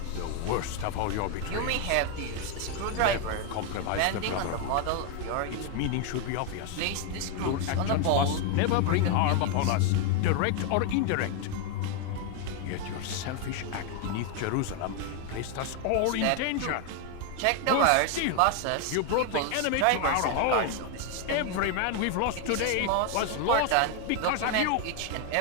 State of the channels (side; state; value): both; different; correlation 0.01